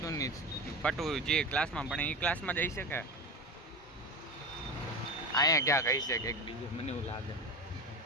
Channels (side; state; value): both; normal; correlation 0.24